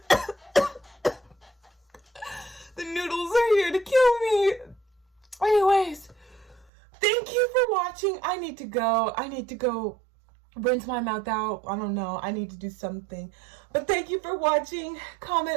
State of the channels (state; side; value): drops out; left; at 6.7 s